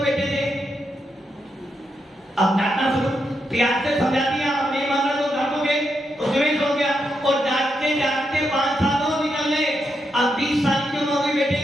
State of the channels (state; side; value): normal; both; correlation 0.83